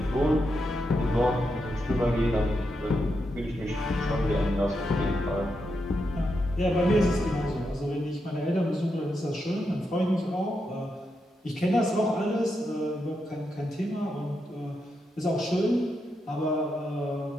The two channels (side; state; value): both; normal; correlation 0.84